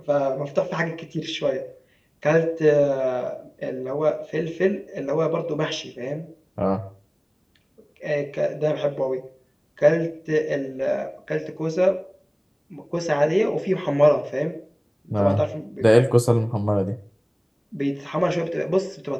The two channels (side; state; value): both; identical; correlation 1.00